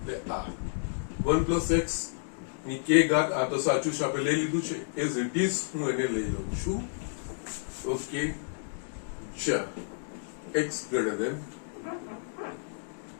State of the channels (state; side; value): silent; right; digital silence